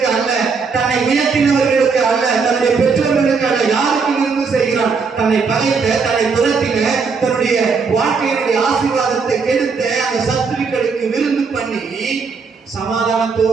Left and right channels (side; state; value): left; quieter; 5.1 dB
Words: அல்ல, தன்னை உயர்த்தினவர்களுக்கு அல்ல, தன்னுடைய பெற்றோர்களுக்கு அல்ல. யாருக்கு விருந்து செய்கிறான்? தன்னை பகைத்த, தன்னை துரத்தின, தன்னுடைய வாழ்க்கையினுடைய ஆசீர்வாதத்தை கெடுத்த அந்த சத்துருக்களுக்கு விருந்து பண்ணி